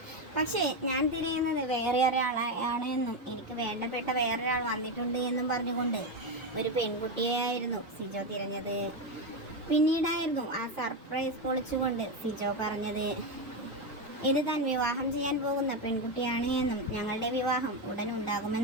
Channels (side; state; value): both; normal; correlation 0.11